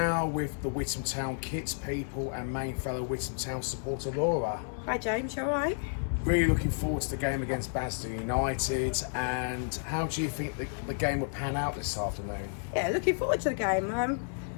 with the Witham Town kids people and main fellow Witham Town supporter Laura. Hi James, you alright? Really looking forward to the game against Basildon United, and how do you think the game will pan out this afternoon? Yeah, looking forward to the game.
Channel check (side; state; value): right; silent; 57 dB below the other